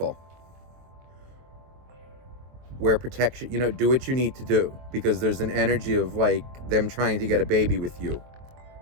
Wear protection, do what you need to do, because there's an energy of like them trying to get a baby with you.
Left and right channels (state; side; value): late; left; 23 ms